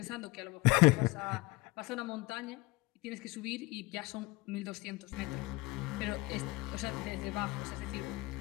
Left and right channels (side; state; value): right; quieter; 22.9 dB